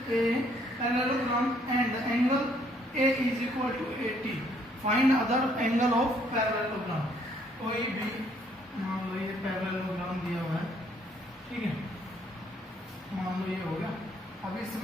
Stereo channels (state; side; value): normal; both; correlation 0.66